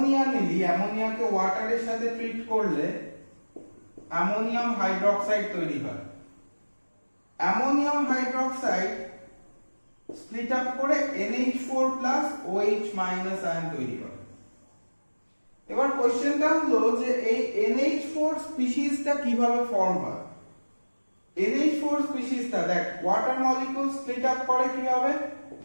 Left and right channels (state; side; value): inverted; both; correlation -1.00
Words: নিলি, অ্যামোনিয়াকে ওয়াটারের সাথে ট্রিট করলে অ্যামোনিয়াম হাইড্রোক্সাইড তৈরি হয়। অ্যামোনিয়াম হাইড্রোক্সাইড স্প্লিট আপ করে NH4+ OH- আয়ন তৈরি করে। এবার কোশ্চেনটা হলো যে এই NH4 স্পিসিসটা কিভাবে ফর্ম হয়। NH4 স্পিসিসটা দেখ ওয়াটার মলিকিউল স্প্লিট আপ করে কিভাবে,